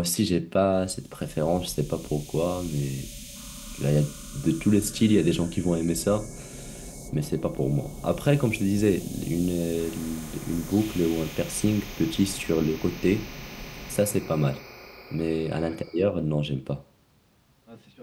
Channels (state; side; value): identical; both; correlation 1.00